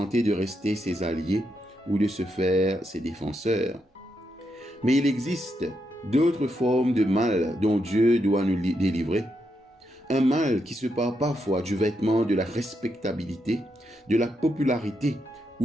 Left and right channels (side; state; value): both; normal; correlation 0.82